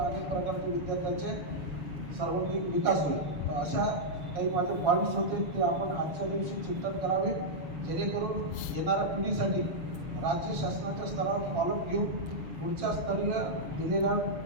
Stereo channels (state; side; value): late; left; 6.8 ms